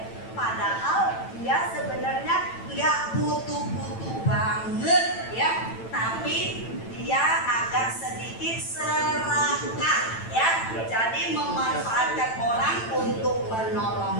Padahal dia sebenarnya nggak butuh-butuh banget, ya. Tapi dia agak sedikit serakah, ya. Jadi memanfaatkan orang untuk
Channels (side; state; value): right; late; 9.0 ms